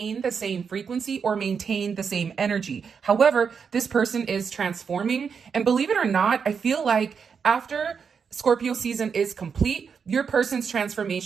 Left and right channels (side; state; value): left; quieter; 6.3 dB